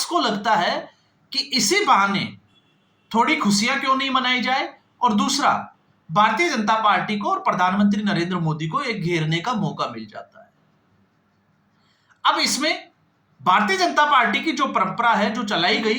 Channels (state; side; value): identical; both; correlation 1.00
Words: को लगता है कि इसी बहाने थोड़ी खुशियां क्यों नहीं मनाई जाए, और दूसरा भारतीय जनता पार्टी को और प्रधानमंत्री नरेंद्र मोदी को एक घेरने का मौका मिल जाता है। अब इसमें भारतीय जनता पार्टी की जो परंपरा है जो चलाई